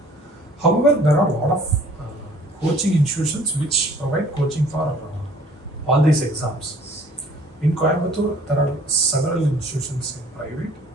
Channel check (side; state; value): both; normal; correlation 0.54